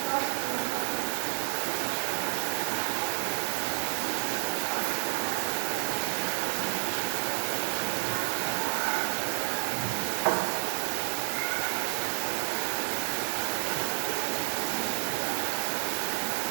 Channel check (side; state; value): left; silent; digital silence